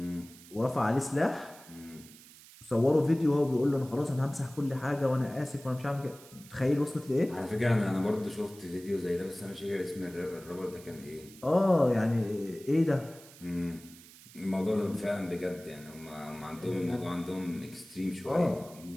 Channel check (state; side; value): noise; right; hiss, 20 dB below the sound